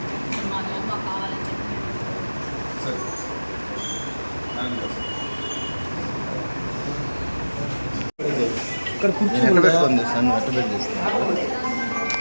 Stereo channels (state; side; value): inverted; both; correlation -1.00